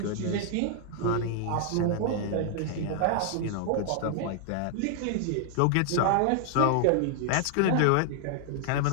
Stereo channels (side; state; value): both; different; correlation 0.00